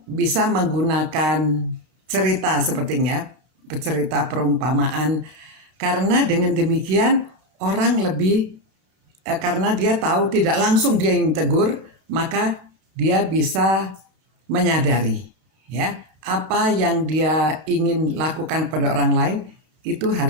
bisa menggunakan cerita sepertinya, cerita perumpamaan. Karena dengan demikian orang lebih, karena dia tahu tidak langsung dia yang tegur, maka dia bisa menyadari ya apa yang dia ingin lakukan pada orang lain itu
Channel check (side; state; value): left; late; 32 ms